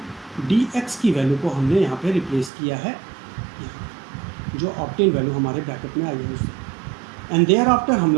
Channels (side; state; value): left; drops out; at 2.5 s